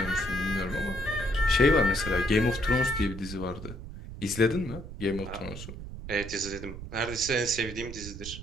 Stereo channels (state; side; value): noise; right; rumble, 11 dB below the sound